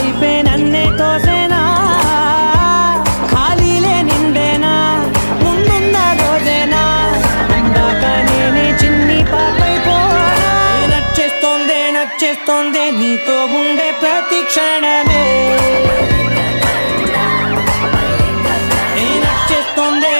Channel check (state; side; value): inverted; both; correlation -1.00